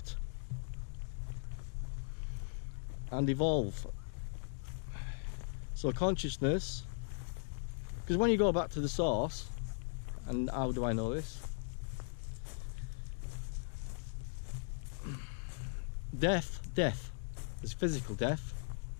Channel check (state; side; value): silent; right; digital silence